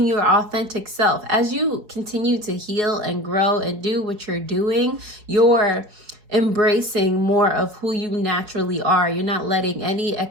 your authentic self. As you continue to heal and grow and do what you're doing, you're embracing more of who you naturally are. You're not letting any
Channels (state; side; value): late; left; 4.7 ms